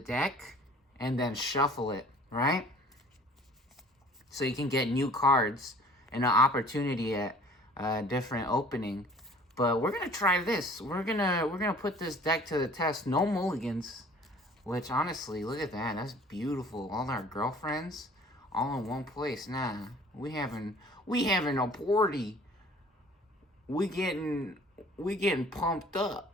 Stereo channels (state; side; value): normal; both; correlation 0.51